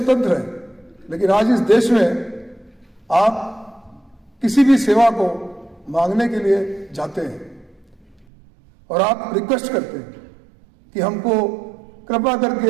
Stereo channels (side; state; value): left; drops out; at 8.2 s